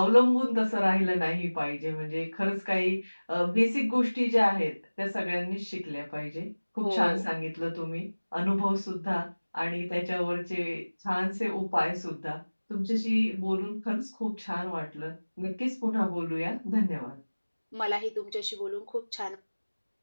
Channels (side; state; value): both; inverted; correlation -1.00